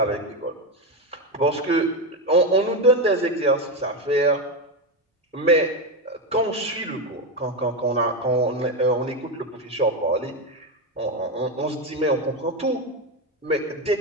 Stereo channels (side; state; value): both; normal; correlation 0.11